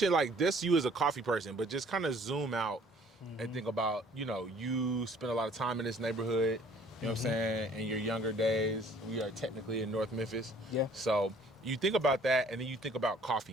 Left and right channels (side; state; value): both; normal; correlation 0.56